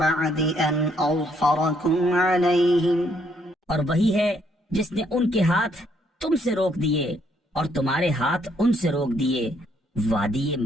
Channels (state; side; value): normal; both; correlation 0.70